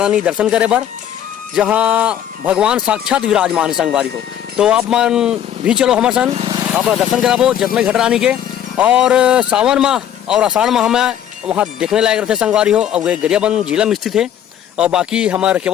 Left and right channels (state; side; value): quieter; right; 10.2 dB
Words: दर्शन करे बर, जहाँ भगवान साक्षात विराजमान है संगवारी हो। तो आप मन भी चलो हमारे सन अपना दर्शन कराबो जतमई घटरानी के। और सावन माह और आषाढ़ माह में वहाँ देखने लायक रहते संगवारी हो। और गरियाबंद जिला में स्थित है। और बाकी हमारे